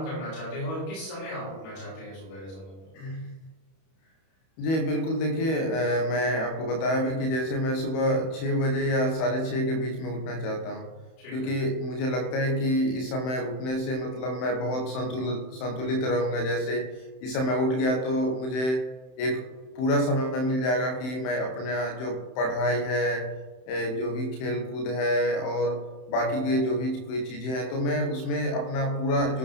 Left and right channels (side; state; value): right; late; 31 ms